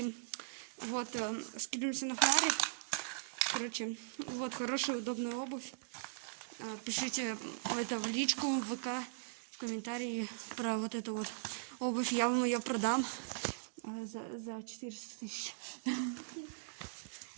вот, скидываемся на фонарик. Короче, вот, хорошая, удобная обувь. Пишите это в личку, в ВК, в комментарии про вот эту вот обувь. Я вам ее продам за 400 000.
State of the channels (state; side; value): silent; left; digital silence